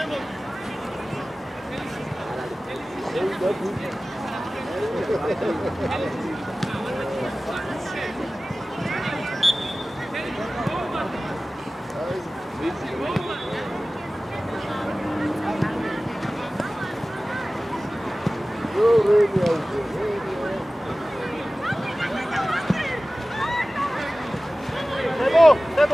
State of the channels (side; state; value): both; normal; correlation 0.97